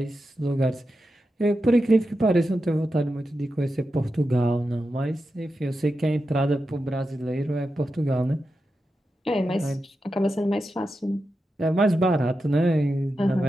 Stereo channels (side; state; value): both; normal; correlation 0.89